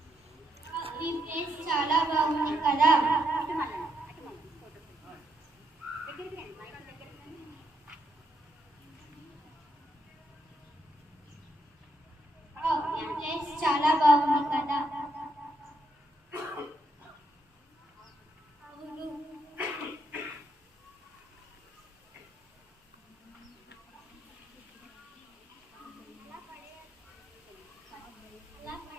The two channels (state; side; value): normal; both; correlation 0.78